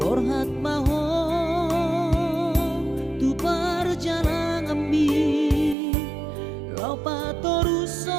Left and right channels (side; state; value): left; drops out; at 5.8 s